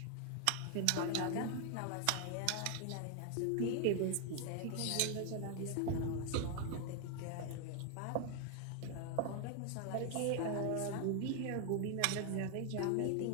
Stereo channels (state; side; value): different; both; correlation 0.00